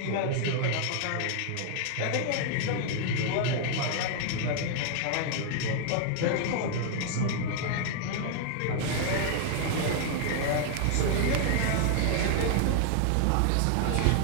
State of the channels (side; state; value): both; different; correlation 0.00